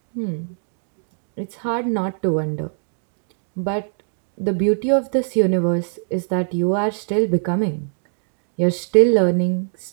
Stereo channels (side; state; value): left; silent; digital silence